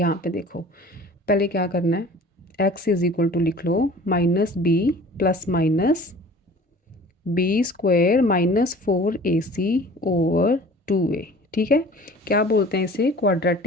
पे देखो पहले क्या करना है, एक्स इज़ इक्वल टू लिख लो minus b plus minus b square minus 4ac over 2a। ठीक है, क्या बोलते हैं इसे,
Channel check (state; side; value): normal; both; correlation 0.45